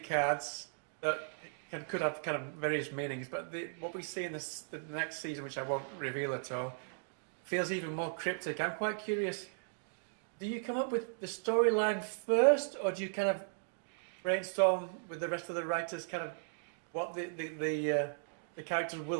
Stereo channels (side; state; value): left; silent; digital silence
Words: cards that could have kind of various meanings, but what we see in the next season, which I won't reveal at all, feels even more cryptic. I'm quite curious. Do you come up with the storyline first, or do you kind of brainstorm with the rest of the writers kind of what the characters